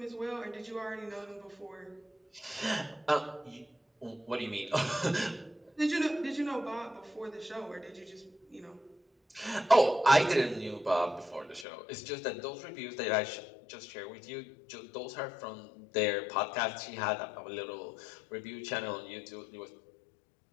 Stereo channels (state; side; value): drops out; right; at 11.7 s